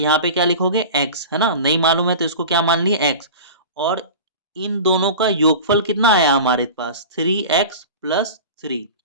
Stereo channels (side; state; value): both; inverted; correlation -0.34